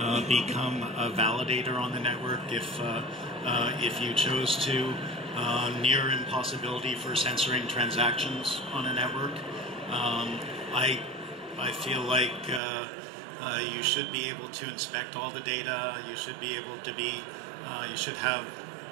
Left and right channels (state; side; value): drops out; left; at 12.6 s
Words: become a validator on the network if you chose to, near impossibility for censoring transactions on a network. I feel like you should be able to inspect all the data. You should be able to be, you should have